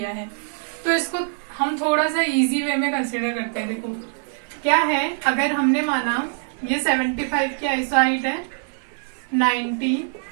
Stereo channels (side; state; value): left; silent; 63 dB below the other